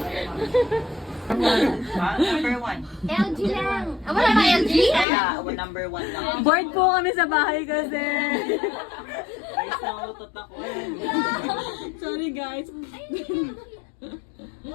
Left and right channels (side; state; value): right; drops out; at 5.1 s